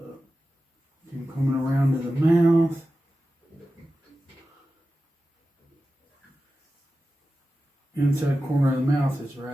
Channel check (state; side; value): normal; both; correlation 0.93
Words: I'm coming around to the mouth. Inside corner of the mouth is